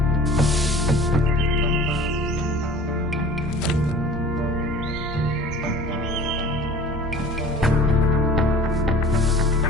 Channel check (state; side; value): normal; both; correlation 0.44